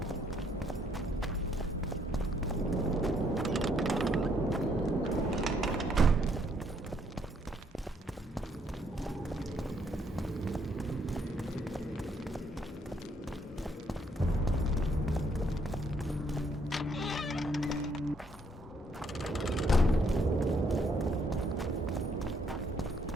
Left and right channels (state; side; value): normal; both; correlation 0.69